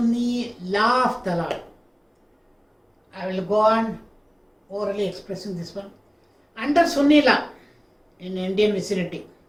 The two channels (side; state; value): both; identical; correlation 1.00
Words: law of talaq. I will go on orally expressing this one. Under Sunni law in Indian vicinity,